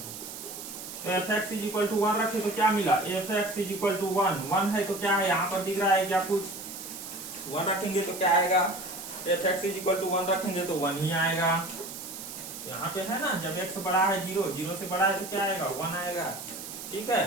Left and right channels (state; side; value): noise; right; hiss, 10 dB below the sound